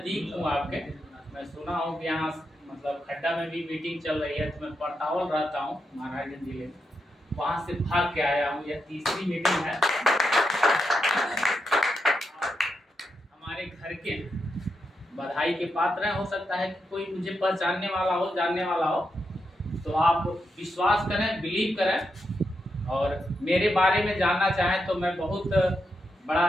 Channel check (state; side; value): normal; both; correlation 0.84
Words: हूँ आपके। मैं सुना हूँ कि यहाँ मतलब खड्डा में भी मीटिंग चल रही है, तो मैं पड़तावल रहता हूँ महाराजगंज जिले में, वहाँ से भाग के आया हूँ। यह तीसरी मीटिंग है। हमारे घर के बधाई के पात्र हैं। हो सकता है कि कोई मुझे पहचानने वाला हो, जानने वाला हो, तो आप विश्वास करें, बिलीव करें और मेरे बारे में जानना चाहें तो मैं बहुत बड़ा